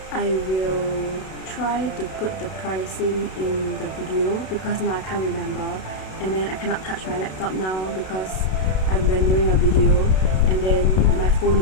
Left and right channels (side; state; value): right; late; 32 ms